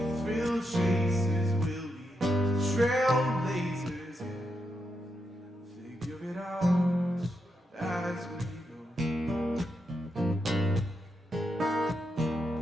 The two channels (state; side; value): normal; both; correlation 0.84